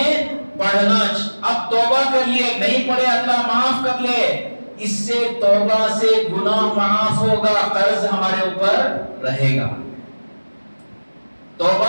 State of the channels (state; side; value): inverted; both; correlation -1.00